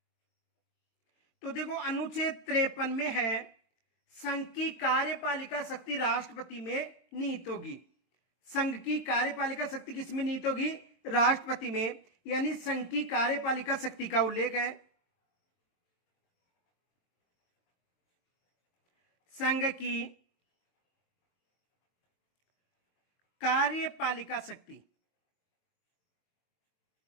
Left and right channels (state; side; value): late; right; 23 ms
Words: तो देखो अनुच्छेद 53 में है संघ की कार्यपालिका शक्ति राष्ट्रपति में निहित होगी। संघ की कार्यपालिका शक्ति किसमें निहित होगी? राष्ट्रपति में। यानी संघ की कार्यपालिका शक्ति का उल्लेख है। संघ की कार्यपालिका शक्ति